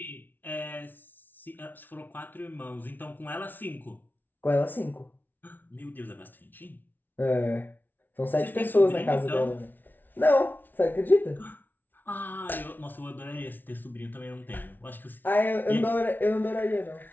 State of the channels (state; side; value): late; right; 0.088 ms